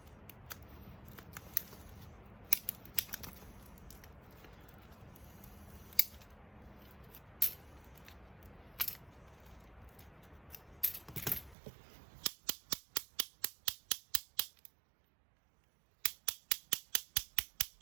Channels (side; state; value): left; drops out; at 11.6 s